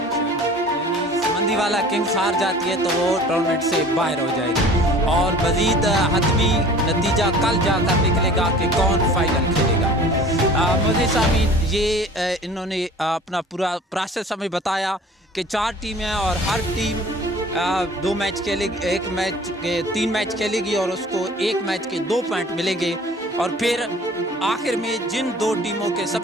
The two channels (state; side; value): normal; both; correlation 0.46